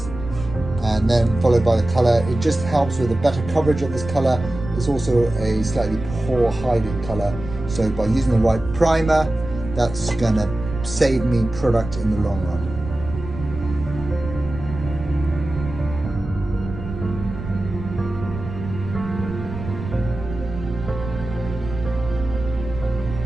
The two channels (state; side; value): noise; right; rumble, 10 dB below the sound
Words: and then followed by the colour. It just helps with a better coverage of this colour. It's also a slightly poor hiding colour, so by using the right primer, that's going to save me product in the long run.